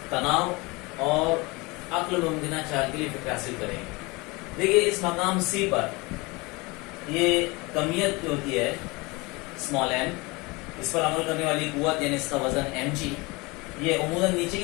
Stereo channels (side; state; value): right; quieter; 25.0 dB